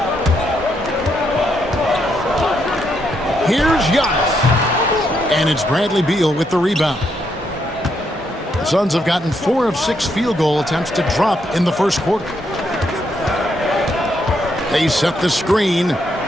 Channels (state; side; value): normal; both; correlation 0.77